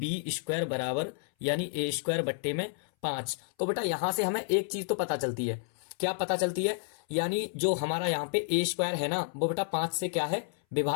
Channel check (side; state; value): right; silent; 57 dB below the other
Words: स्क्वायर बराबर यानी ए स्क्वायर बट्टे में 5। तो बेटा यहां से हमें एक चीज तो पता चलती है, क्या पता चलती है, यानी जो हमारा यहाँ पे ए स्क्वायर है ना, वो बेटा 5 से क्या है,